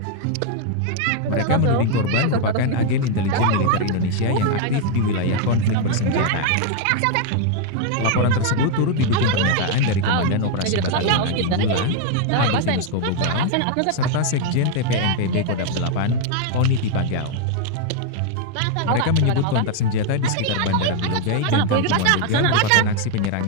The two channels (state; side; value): different; both; correlation 0.00